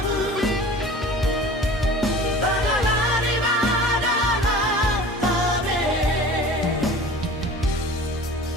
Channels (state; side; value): normal; both; correlation 0.41